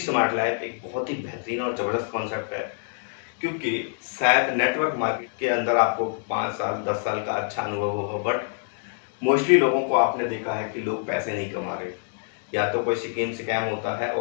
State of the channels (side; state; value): right; silent; digital silence